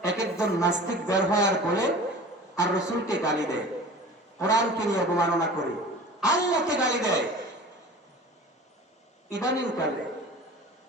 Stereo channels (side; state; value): both; normal; correlation 0.40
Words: এক একজন নাস্তিক বের হয় আর বলে আর রসুলকে গালি দেয়, কোরআনকে নিয়ে অবমাননা করে, আল্লাহকে গালি দেয়। ইদানিং কালে